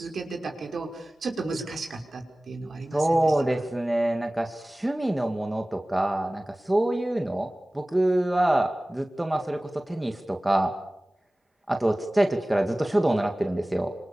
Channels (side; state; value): both; normal; correlation 0.98